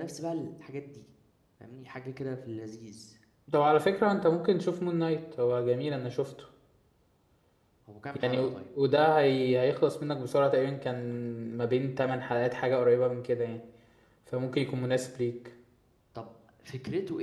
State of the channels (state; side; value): identical; both; correlation 1.00